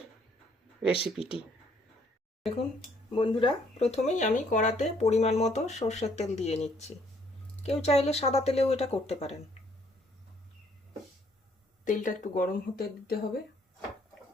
রেসিপিটি। দেখুন বন্ধুরা, প্রথমেই আমি কড়াতে পরিমাণ মতো সর্ষের তেল দিয়ে নিচ্ছি। কেউ চাইলে সাদা তেলেও এটা করতে পারেন। তেলটা একটু গরম হতে দিতে হবে।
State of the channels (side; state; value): both; normal; correlation 0.66